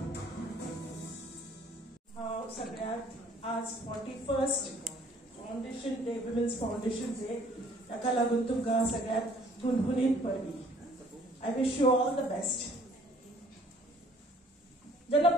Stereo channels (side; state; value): both; normal; correlation 0.58